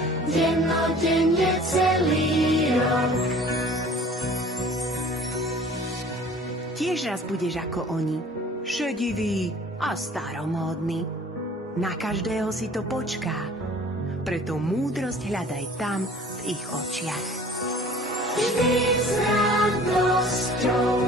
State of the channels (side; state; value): both; normal; correlation 0.48